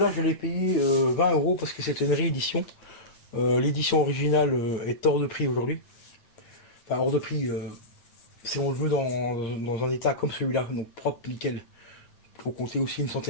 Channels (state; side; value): late; right; 8.8 ms